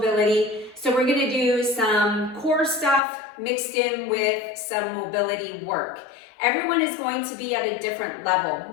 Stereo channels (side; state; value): right; drops out; at 3.0 s